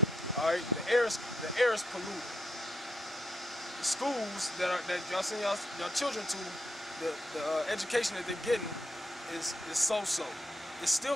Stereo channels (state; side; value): normal; both; correlation 0.78